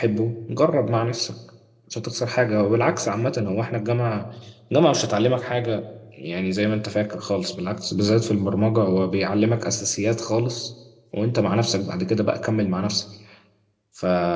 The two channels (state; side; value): identical; both; correlation 1.00